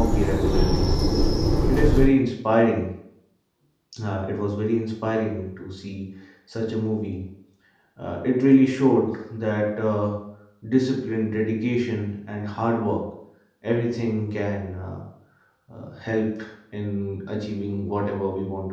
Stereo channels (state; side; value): identical; both; correlation 1.00